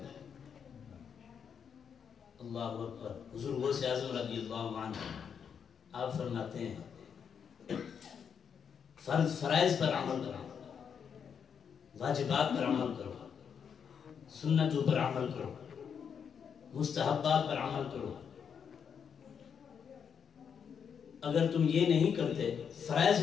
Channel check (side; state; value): right; quieter; 7.2 dB